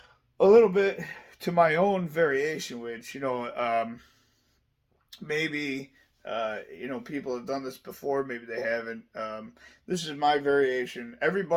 a little bit to my own variation, which maybe people have done this before, maybe they haven't. This is my variation.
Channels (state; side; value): identical; both; correlation 1.00